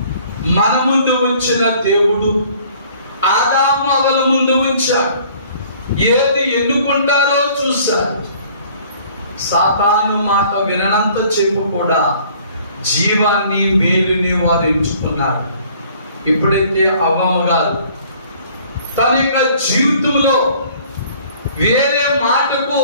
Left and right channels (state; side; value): inverted; both; correlation -0.55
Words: మన ముందు ఉంచిన దేవుడు ఆదాము అవల ముందు ఉంచాడు. ఏది ఎన్నుకుంటారో చూశారు. సాతాను మాట వినంత చెప్పు కూడా జీవాన్ని మేలుని వారు ఎంచుకున్నారు. ఎప్పుడైతే అవ్వమ్మ గారు తన యొక్క జీవితంలో వేరే మాటకు